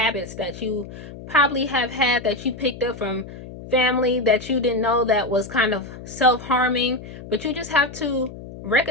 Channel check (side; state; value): left; noise; hum, 13 dB below the sound